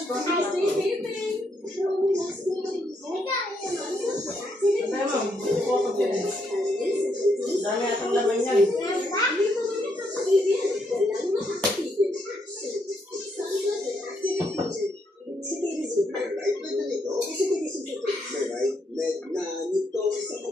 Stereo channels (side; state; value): both; normal; correlation 0.77